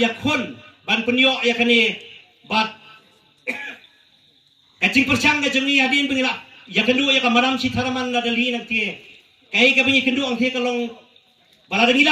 ya khon ban penyo ya kani bat kacing persang ka jengi hadin pengilap ya kedua ya kamaram si tharaman na dali nanti kai ka bingi kedua ang the kalong bala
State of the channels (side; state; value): both; identical; correlation 1.00